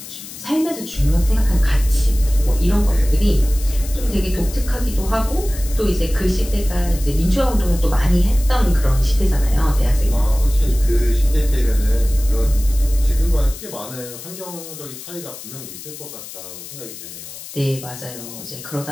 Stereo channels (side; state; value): left; noise; hiss, 13 dB below the sound